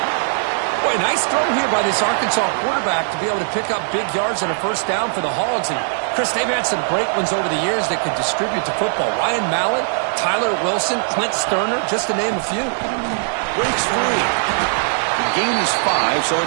Boy, nice throw here by this Arkansas quarterback to be able to pick up big yards on a 1st down for the Hogs. And, Chris, they've had some great ones over the years that could distribute the football. Ryan Mallett, Tyler Wilson, Clint Sterner, just to name a few. Breaks free. The gain is 5, so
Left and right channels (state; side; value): silent; left; digital silence